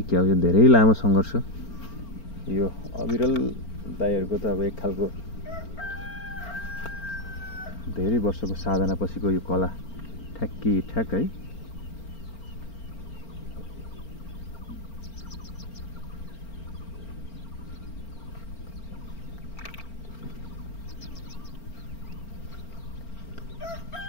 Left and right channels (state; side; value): late; right; 4.4 ms